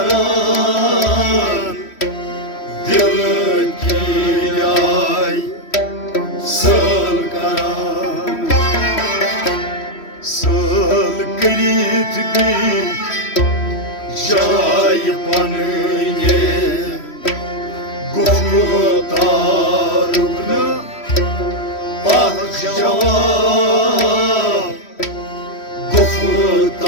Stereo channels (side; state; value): right; late; 3.1 ms